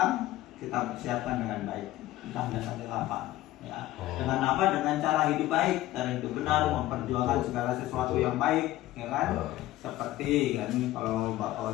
kita persiapkan dengan baik. Entah datangnya kapan, ya. Dengan apa? Dengan cara hidup baik, cara hidup benar, memperjuangkan segala sesuatu yang baik, ya kan? Seperti kan kalau Bapak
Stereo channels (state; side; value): quieter; right; 15.7 dB